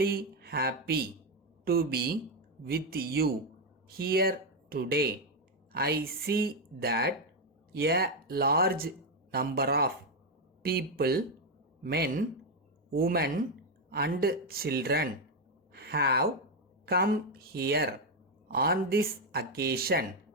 happy to be with you here today. I see that a large number of people, men, women, and children have come here on this occasion.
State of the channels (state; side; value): normal; both; correlation 0.05